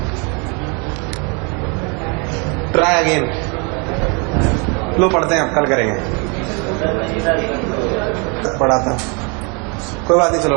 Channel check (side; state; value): left; quieter; 32.6 dB